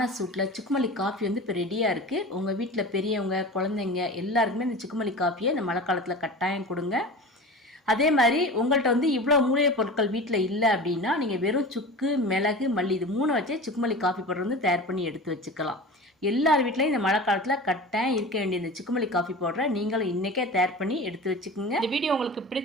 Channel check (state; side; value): normal; both; correlation 0.34